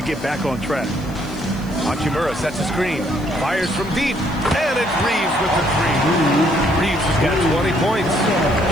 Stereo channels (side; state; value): right; noise; hiss, 25 dB below the sound